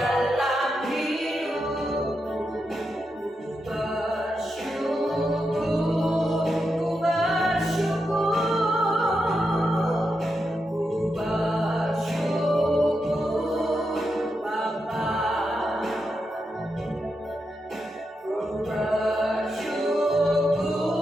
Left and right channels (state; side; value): normal; both; correlation 0.86